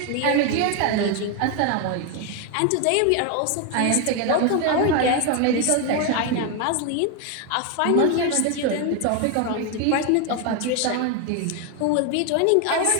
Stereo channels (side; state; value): both; different; correlation 0.01